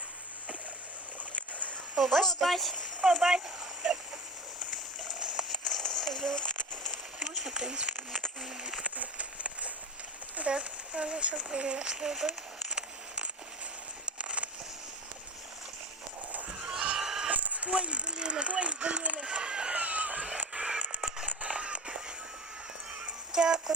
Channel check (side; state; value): both; normal; correlation 0.31